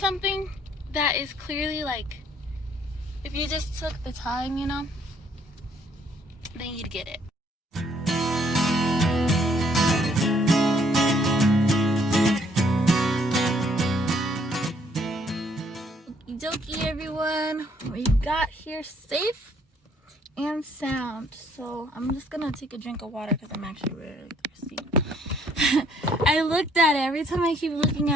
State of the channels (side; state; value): both; normal; correlation 0.65